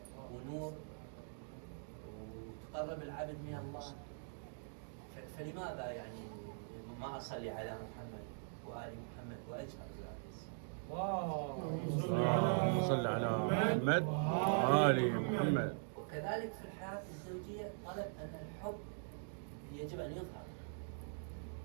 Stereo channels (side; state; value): left; silent; digital silence